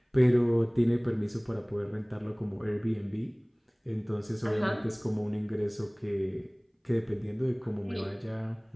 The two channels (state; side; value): identical; both; correlation 1.00